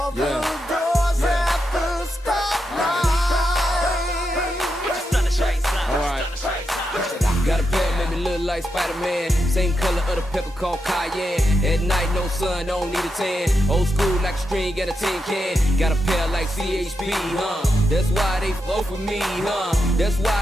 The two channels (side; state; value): both; normal; correlation 0.85